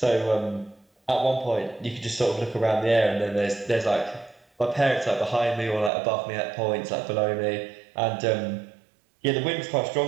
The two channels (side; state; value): left; drops out; at 5.9 s